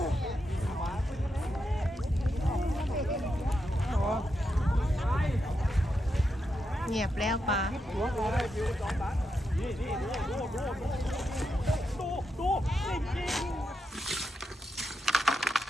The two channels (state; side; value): normal; both; correlation 0.85